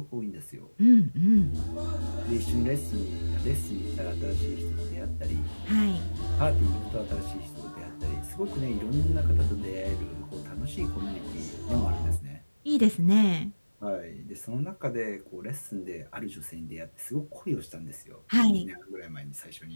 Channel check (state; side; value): inverted; both; correlation -1.00